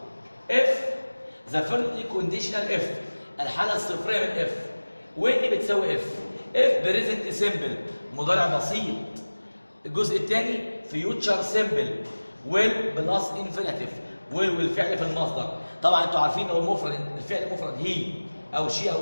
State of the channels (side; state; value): both; inverted; correlation -1.00